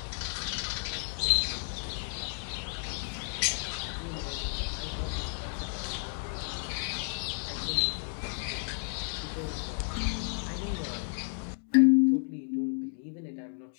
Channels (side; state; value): right; silent; 56 dB below the other